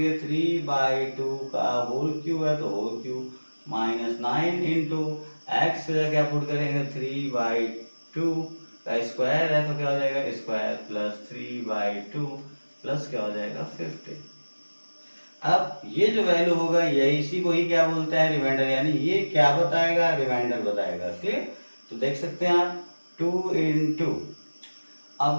3/2 का होल क्यूब है तो whole cube minus 9 into x से क्या पुट करेंगे? 3/2 का स्क्वायर है तो क्या हो जाएगा स्क्वायर प्लस 3/2 प्लस क्या हो जाएगा 50। अब ये जो वैल्यू होगा यही इसी को ही क्या बोलते हैं रिमाइंडर, यानी ये क्या बताएगा रिमाइंडर बताएगा। क्लियर? तो देख सकते हैं आप 2 इंटू,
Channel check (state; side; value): inverted; both; correlation -1.00